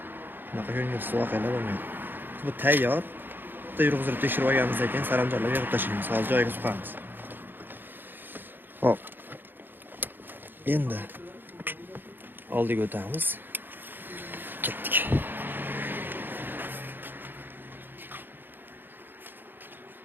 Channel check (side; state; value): left; late; 0.095 ms